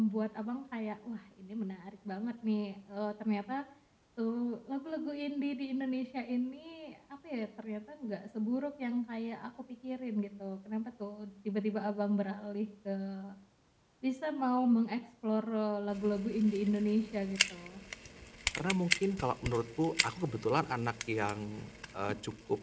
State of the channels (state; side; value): identical; both; correlation 1.00